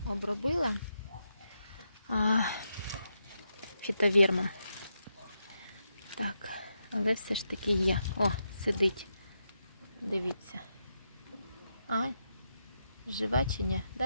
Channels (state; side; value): inverted; both; correlation -0.84